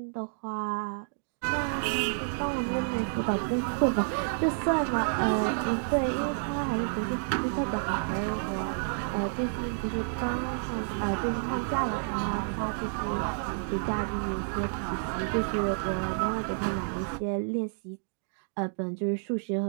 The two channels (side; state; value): left; silent; digital silence